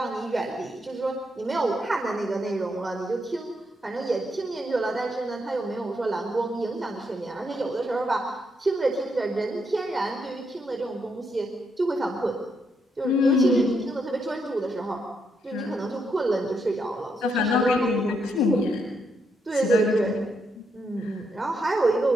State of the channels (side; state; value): both; normal; correlation 0.79